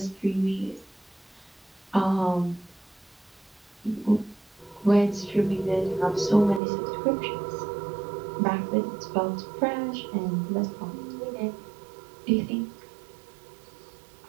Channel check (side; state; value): left; drops out; at 6.6 s